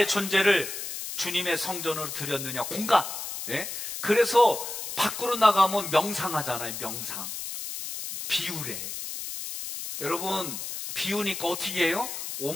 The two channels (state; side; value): noise; left; hiss, 7 dB below the sound